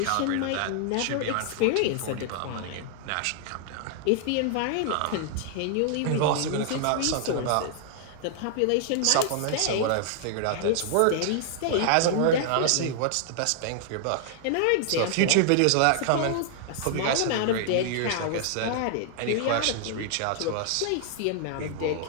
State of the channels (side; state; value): both; different; correlation -0.01